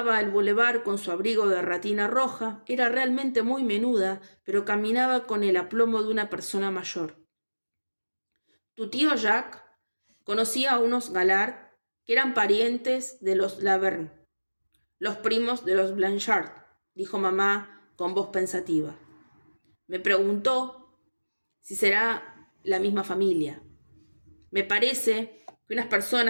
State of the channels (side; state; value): both; inverted; correlation -1.00